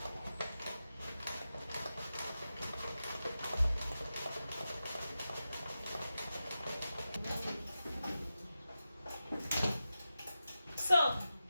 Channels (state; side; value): inverted; both; correlation -0.92